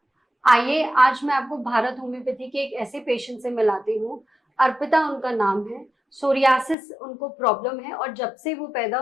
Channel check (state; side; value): drops out; right; at 6.8 s